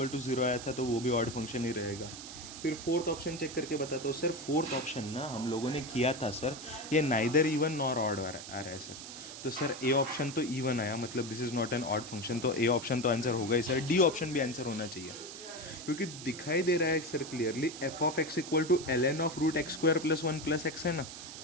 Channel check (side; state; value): right; noise; hiss, 11 dB below the sound